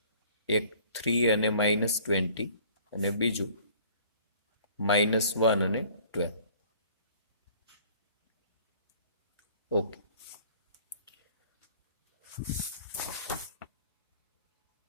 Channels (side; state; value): both; inverted; correlation -0.53